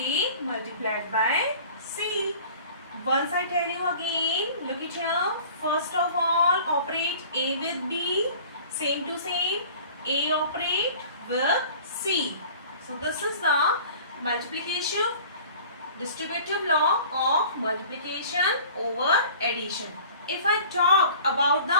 multiplied by C. Once I tell you again, look at here. First of all, operate A with B. Same to same. A operate with C. So this is the multiplication, distributive law of multiplication over addition. If I talk about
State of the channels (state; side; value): inverted; both; correlation -0.45